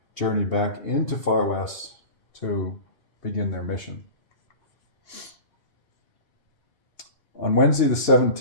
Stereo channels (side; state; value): right; late; 2.8 ms